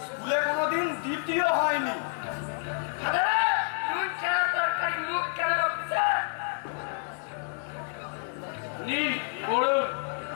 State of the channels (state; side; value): silent; right; 57 dB below the other